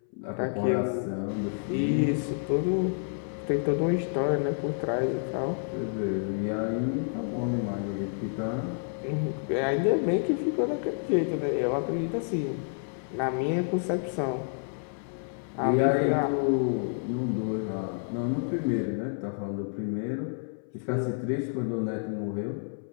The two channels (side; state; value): right; silent; 58 dB below the other